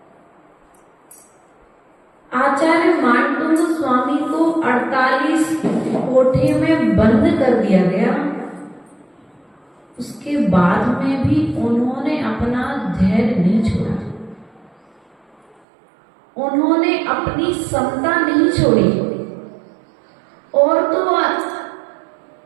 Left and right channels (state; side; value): drops out; left; at 15.6 s